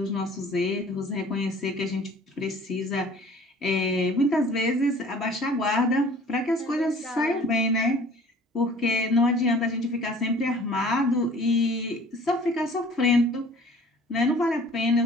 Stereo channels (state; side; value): normal; both; correlation 0.49